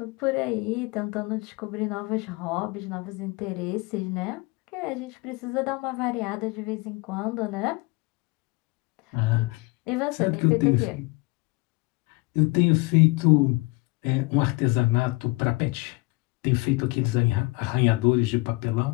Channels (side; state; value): right; quieter; 24.8 dB